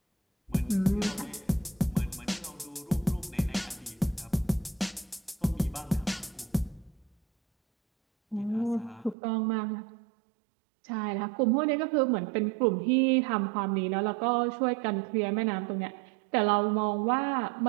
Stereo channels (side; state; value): left; drops out; at 9.2 s